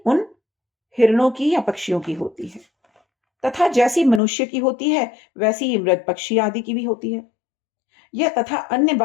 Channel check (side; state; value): right; drops out; at 4.2 s